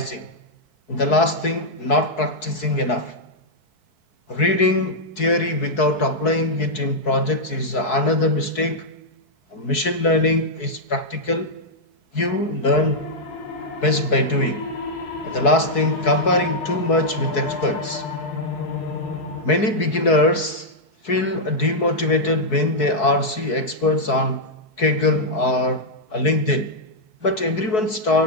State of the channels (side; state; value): right; late; 4.6 ms